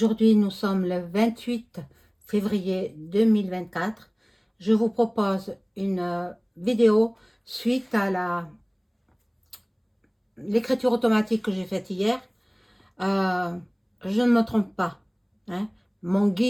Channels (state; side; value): identical; both; correlation 1.00